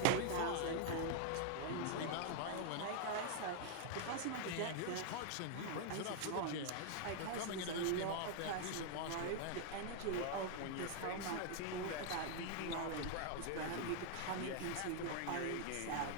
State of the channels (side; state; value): both; different; correlation 0.00